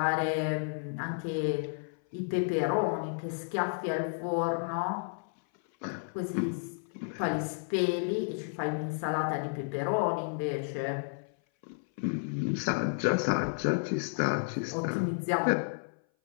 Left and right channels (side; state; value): right; silent; 57 dB below the other